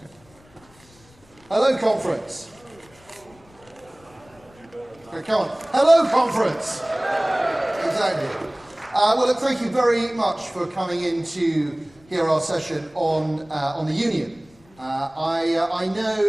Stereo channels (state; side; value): noise; left; rumble, 28 dB below the sound